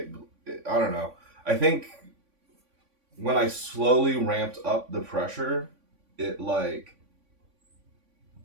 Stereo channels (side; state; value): left; late; 3.5 ms